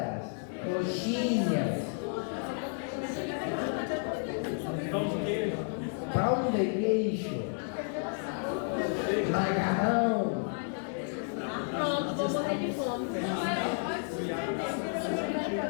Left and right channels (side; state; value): right; silent; 57 dB below the other